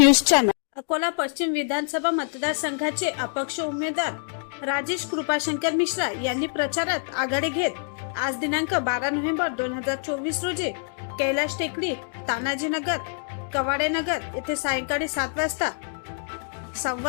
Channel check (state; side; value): silent; right; digital silence